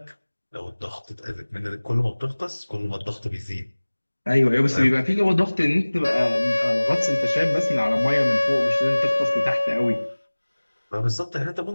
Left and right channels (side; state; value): both; inverted; correlation -1.00